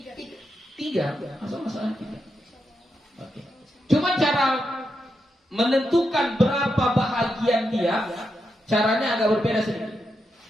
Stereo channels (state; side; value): normal; both; correlation 0.85